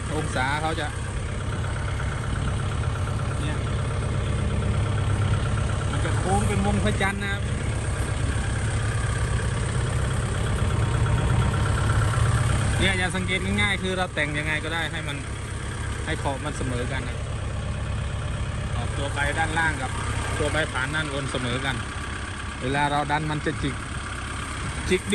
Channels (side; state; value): both; identical; correlation 1.00